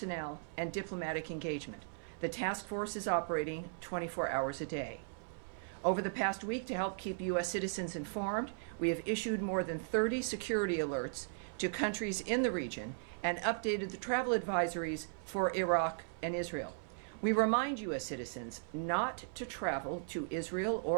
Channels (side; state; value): left; silent; 53 dB below the other